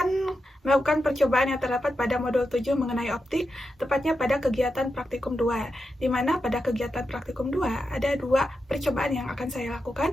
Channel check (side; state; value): both; normal; correlation 0.88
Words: melakukan percobaan yang terdapat pada modul 7 mengenai optik, tepatnya pada kegiatan praktikum 2, di mana pada kegiatan praktikum 2 ada dua percobaan yang akan saya